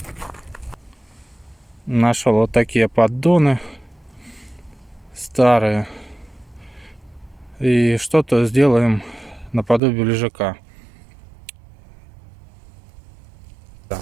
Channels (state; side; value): drops out; left; at 9.8 s